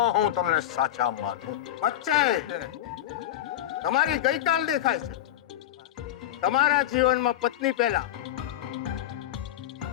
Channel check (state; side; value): quieter; right; 12.7 dB